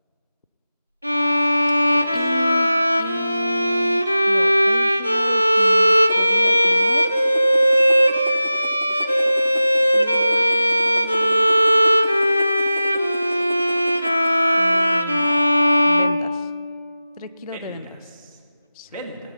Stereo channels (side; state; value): both; inverted; correlation -0.95